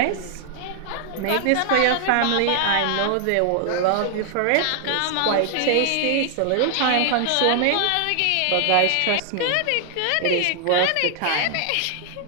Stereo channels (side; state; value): both; different; correlation 0.00